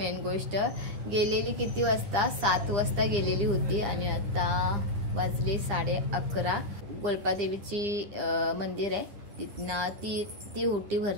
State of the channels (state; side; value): late; left; 10 ms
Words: गोष्ट गेलेली किती वाजता, 7 वाजता गेलेली होती आणि आता वाजले 11:30। गोलपा देवीची मंदिर आहे तिथनं ती होटी